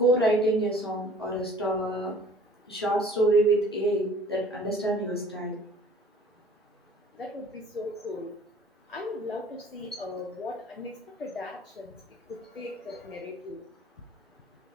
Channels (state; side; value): normal; both; correlation 0.51